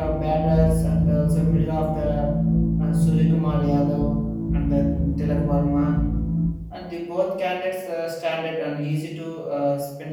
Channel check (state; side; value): identical; both; correlation 1.00